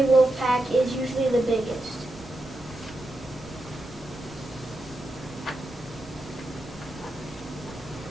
a wolf pack is usually the biggest.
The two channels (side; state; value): both; normal; correlation 0.87